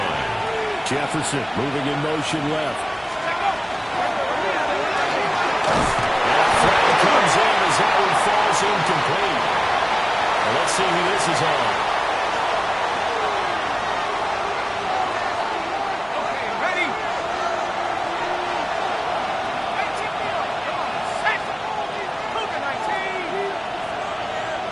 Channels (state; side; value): identical; both; correlation 1.00